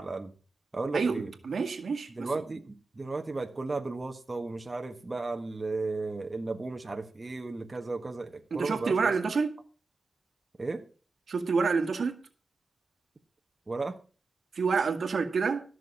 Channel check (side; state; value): left; quieter; 4.1 dB